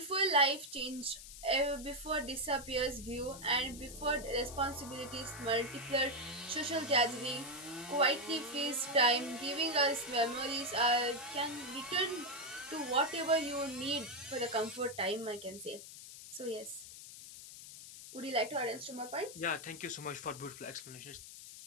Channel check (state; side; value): noise; left; hiss, 13 dB below the sound